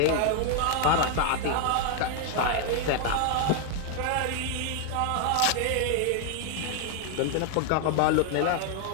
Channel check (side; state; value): both; different; correlation 0.00